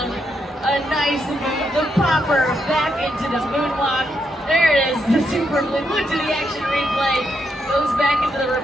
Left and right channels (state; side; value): normal; both; correlation 0.80